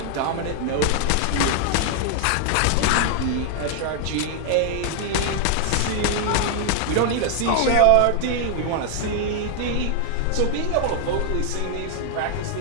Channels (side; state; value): both; different; correlation 0.00